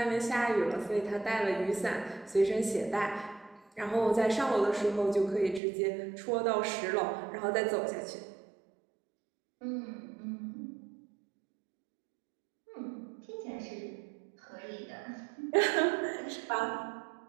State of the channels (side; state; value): left; drops out; at 5.6 s